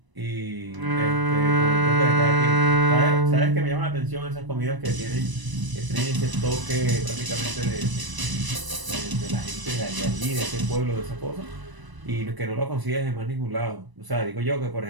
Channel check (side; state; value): left; late; 1.0 ms